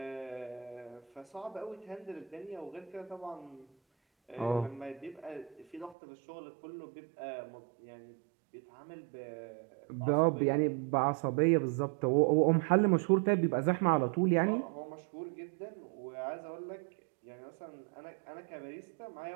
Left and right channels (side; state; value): left; drops out; at 6.0 s